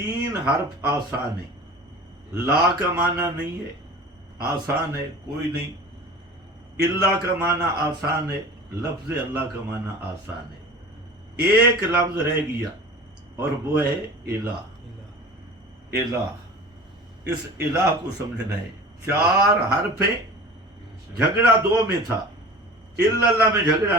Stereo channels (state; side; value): normal; both; correlation 0.38